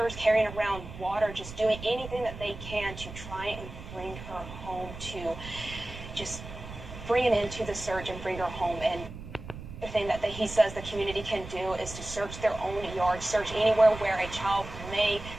carrying around water, just doing anything that they can to try and bring her home, to just bring it into the search and bring her home. And the thing that he says the community can do is to search their own yard, search anywhere where a child may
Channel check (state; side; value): noise; right; rumble, 12 dB below the sound